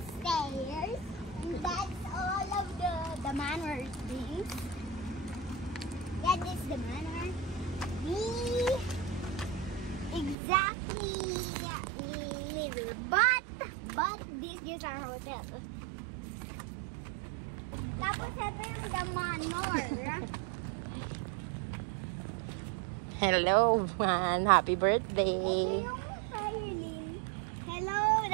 stairs. And that's all of the manor things. Yeah, this is the manor. Exactly little, but this is our hotel. Tapos ito yung the manor. Hello, man. Happy birthday. Hello,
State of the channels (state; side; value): drops out; left; at 10.4 s